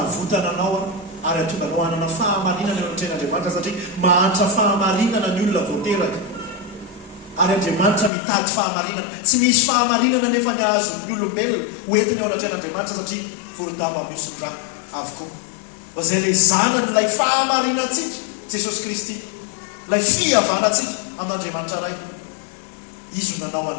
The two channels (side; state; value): right; drops out; at 8.1 s